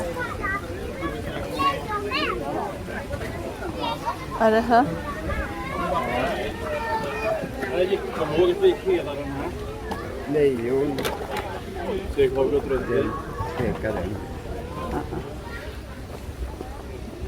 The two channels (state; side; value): identical; both; correlation 1.00